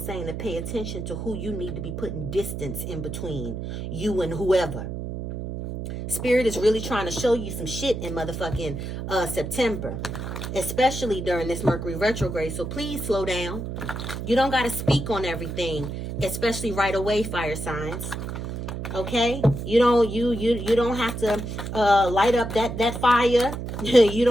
to pay attention to who you need to be putting distance in between you and whoever. Spirit is really trying to show you some shit in motherfucking September, especially during this Mercury retrograde. So please slow down. You don't got to speak on everything, especially right away, fire signs. Okay, you don't have to light up that fire. You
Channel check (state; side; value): noise; right; hum, 6 dB below the sound